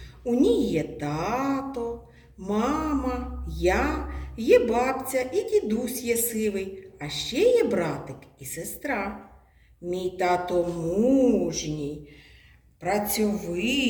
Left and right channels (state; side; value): identical; both; correlation 1.00